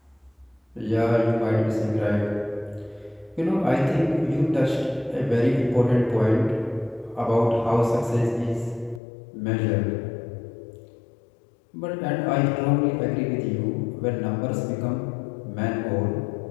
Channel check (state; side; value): drops out; right; at 9.0 s